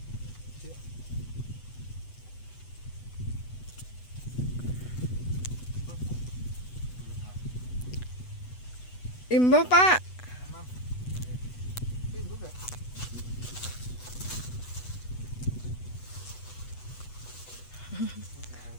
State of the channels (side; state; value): right; late; 8.1 ms